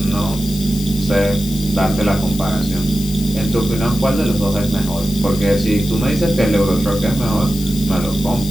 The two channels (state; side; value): noise; left; hiss, 12 dB below the sound